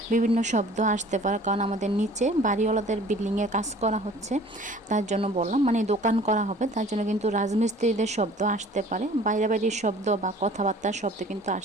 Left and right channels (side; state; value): both; normal; correlation 0.49